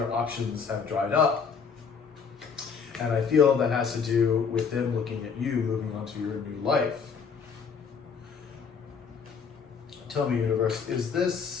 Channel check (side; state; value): right; quieter; 6.0 dB